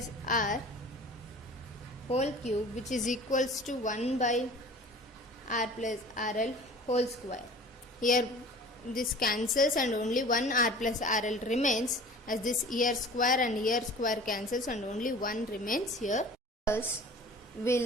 R whole cube, which is equals to 1 by R plus RL whole square. Here this cancels and only 1 R plus RL remains, as this here square and here square cancels and only 1 remains here. Thus,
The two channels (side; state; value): both; normal; correlation 0.43